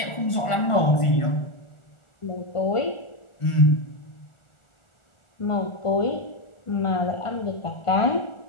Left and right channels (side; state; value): right; late; 1.5 ms